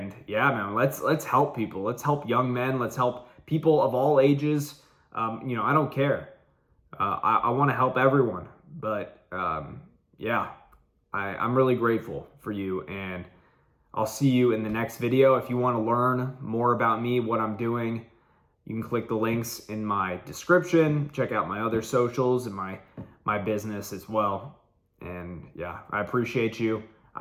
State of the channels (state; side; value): identical; both; correlation 1.00